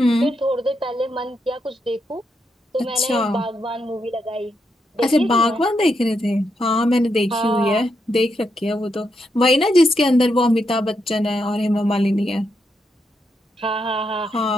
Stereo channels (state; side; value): normal; both; correlation 0.82